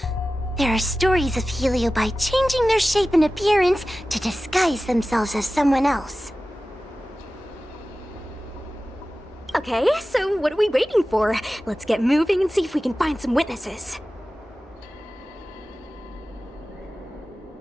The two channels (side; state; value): both; normal; correlation 0.95